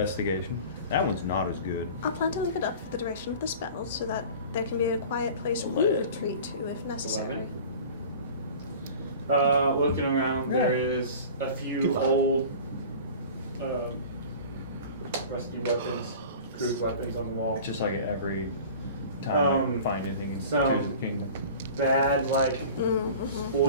That one's not as good. I'll plan to leave it up for the duration of the spell so that there can be a quiet place we retreat to if necessary. 11. Looking around, there is a few old, rusty weapons, crude weapons on the wall. Just like every time I find anything in some- Tears of the Kingdom. Bad, like Mm-hmm.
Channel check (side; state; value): both; inverted; correlation -0.41